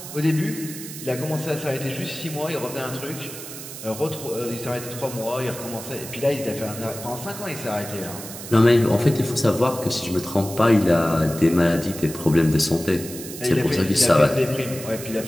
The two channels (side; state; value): right; noise; hiss, 11 dB below the sound